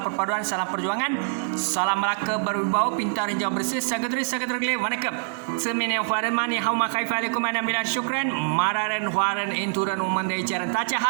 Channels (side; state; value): left; silent; 61 dB below the other